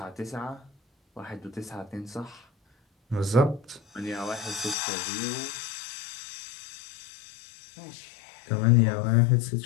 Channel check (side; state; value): right; drops out; at 4.8 s